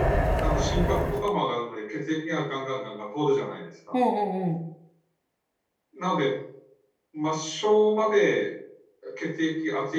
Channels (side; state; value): both; identical; correlation 1.00